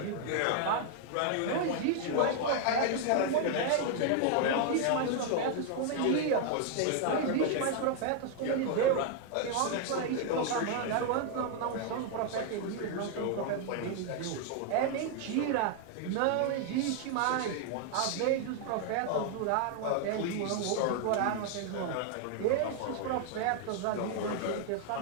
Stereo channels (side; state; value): both; different; correlation 0.00